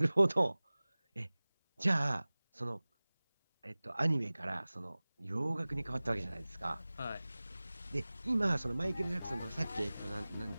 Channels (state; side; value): inverted; both; correlation -0.99